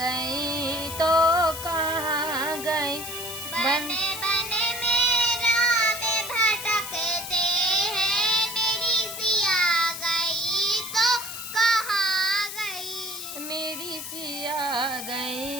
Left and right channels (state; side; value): noise; left; hiss, 8 dB below the sound